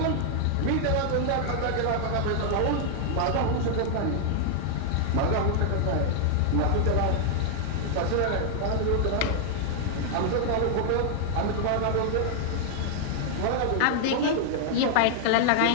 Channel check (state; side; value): different; both; correlation 0.00